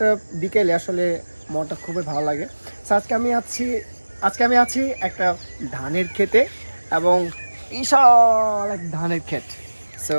বিকেলে আসলে মনটা খুবই ভালো লাগে। সো আজকে আমি আছি একটা ধানের ক্ষেতে এবং বিশাল এক ধানের ক্ষেত। সো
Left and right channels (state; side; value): inverted; both; correlation -1.00